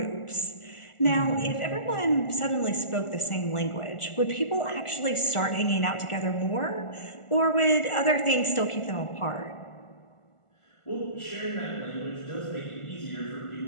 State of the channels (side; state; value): right; late; 1.4 ms